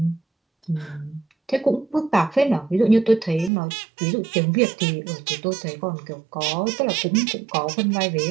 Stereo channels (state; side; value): drops out; left; at 3.5 s